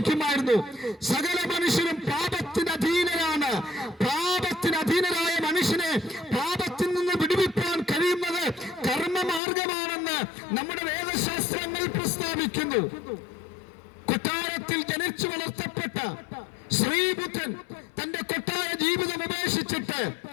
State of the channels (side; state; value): right; drops out; at 9.4 s